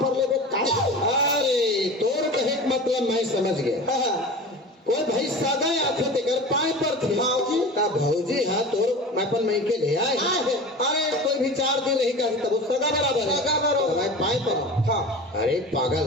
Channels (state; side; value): normal; both; correlation 0.34